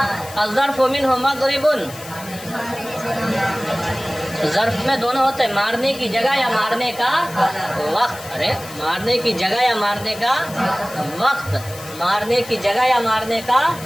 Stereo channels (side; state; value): left; noise; hiss, 15 dB below the sound